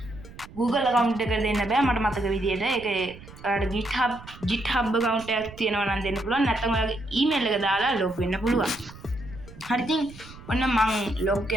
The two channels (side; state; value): right; noise; rumble, 18 dB below the sound